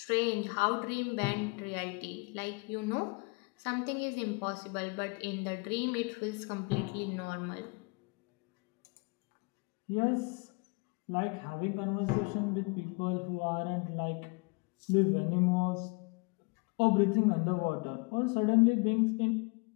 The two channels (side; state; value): right; quieter; 30.9 dB